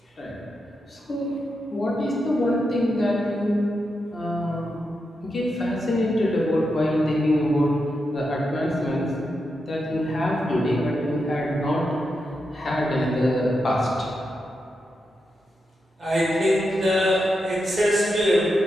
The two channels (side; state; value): both; normal; correlation 0.86